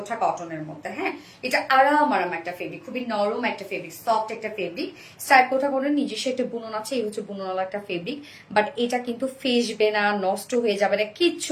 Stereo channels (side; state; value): both; identical; correlation 1.00